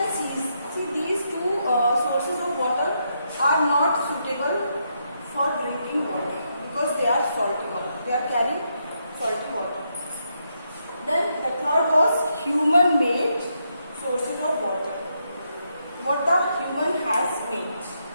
seas. See, these 2 sources of water are not suitable for drinking water because they are salty water. They are carrying salty water. Then the third was human-made sources of water. What the human has made.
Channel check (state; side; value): inverted; both; correlation -0.80